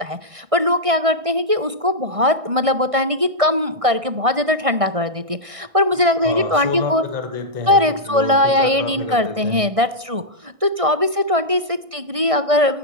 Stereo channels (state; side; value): late; left; 1.6 ms